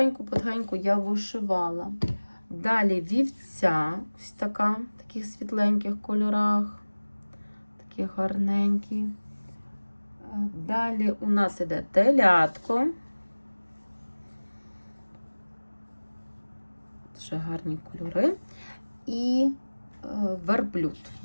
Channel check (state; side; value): inverted; both; correlation -1.00